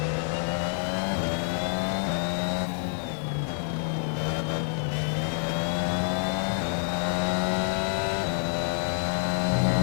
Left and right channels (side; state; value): right; silent; 60 dB below the other